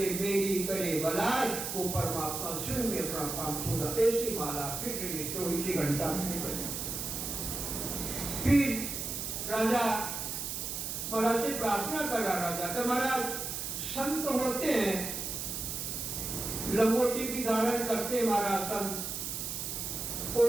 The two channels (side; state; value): right; noise; hiss, 4 dB below the sound